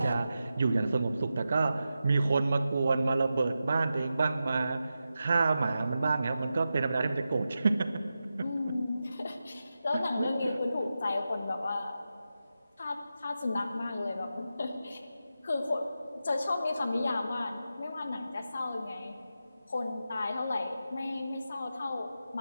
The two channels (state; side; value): inverted; both; correlation -0.91